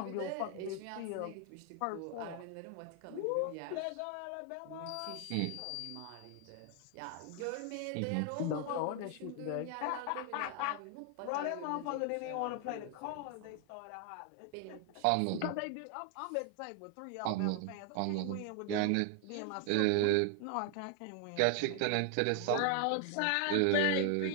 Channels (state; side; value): different; both; correlation 0.00